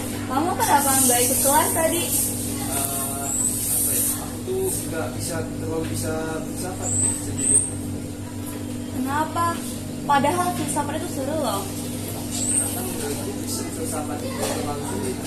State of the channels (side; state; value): both; identical; correlation 1.00